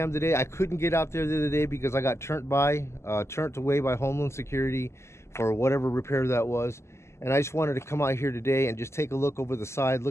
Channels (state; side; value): late; right; 0.13 ms